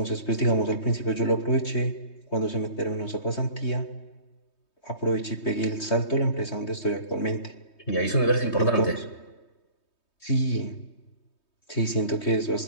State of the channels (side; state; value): right; late; 3.2 ms